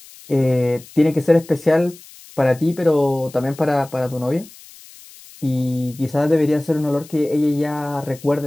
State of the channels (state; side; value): noise; left; hiss, 21 dB below the sound